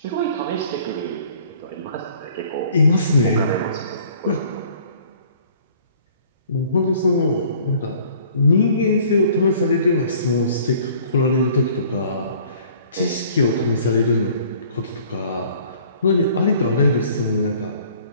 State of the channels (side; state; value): both; inverted; correlation -0.54